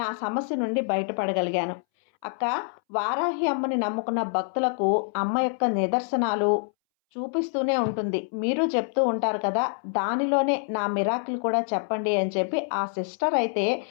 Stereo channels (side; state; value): right; silent; 61 dB below the other